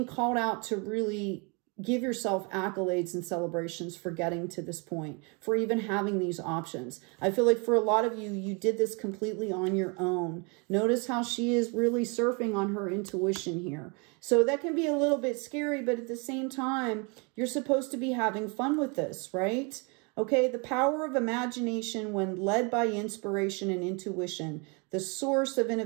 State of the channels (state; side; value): quieter; left; 32.2 dB